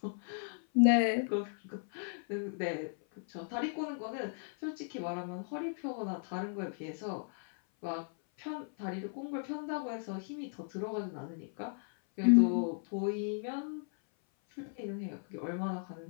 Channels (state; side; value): silent; right; 54 dB below the other